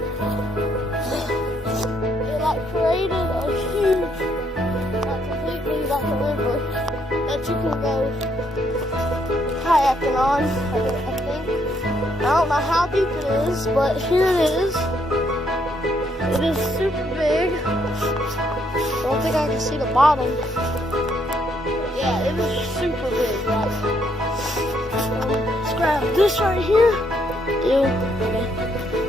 it created a huge, completely a river that you can go kayaking on, I think. I don't know how deep it is, but here it is. It is super big. I don't think I can see the bottom. Yeah, it is super big. Let's grab this right here. Ew, okay.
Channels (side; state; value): both; normal; correlation 0.72